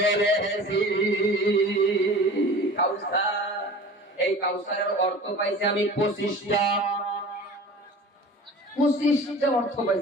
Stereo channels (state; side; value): normal; both; correlation 0.40